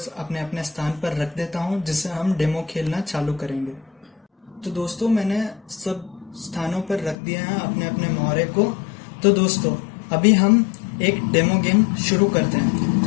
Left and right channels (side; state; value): right; drops out; at 7.2 s